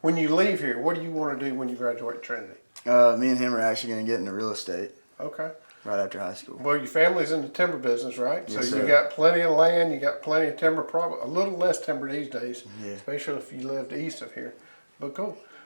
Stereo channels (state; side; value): inverted; both; correlation -1.00